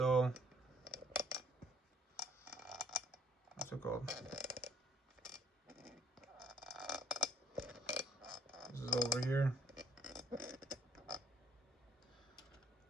what's it called? This is over here.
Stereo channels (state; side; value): normal; both; correlation 0.65